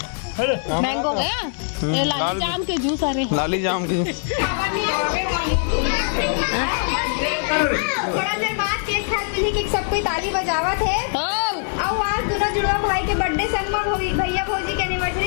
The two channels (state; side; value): silent; right; 63 dB below the other